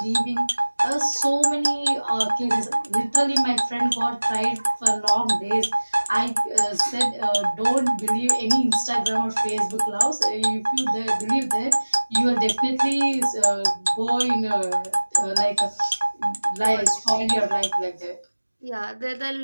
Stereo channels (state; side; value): inverted; both; correlation -1.00